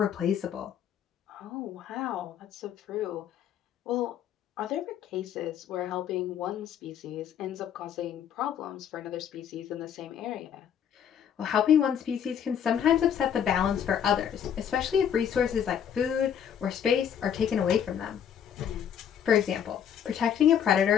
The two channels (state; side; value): quieter; right; 8.8 dB